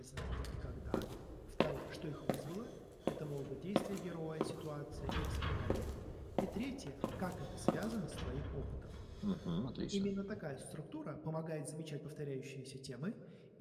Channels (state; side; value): identical; both; correlation 1.00